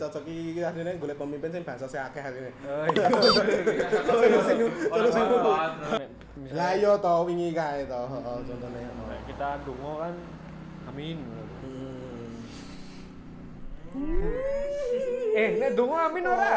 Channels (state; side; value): identical; both; correlation 1.00